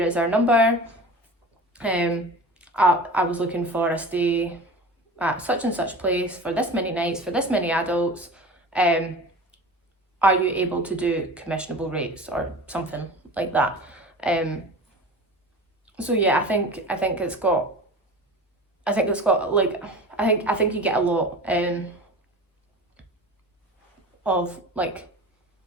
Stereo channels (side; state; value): both; normal; correlation 0.36